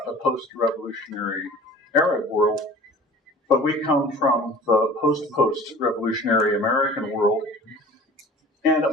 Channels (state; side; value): normal; both; correlation 0.43